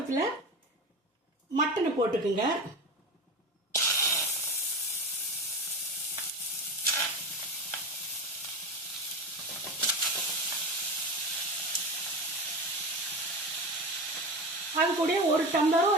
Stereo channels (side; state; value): both; normal; correlation 0.25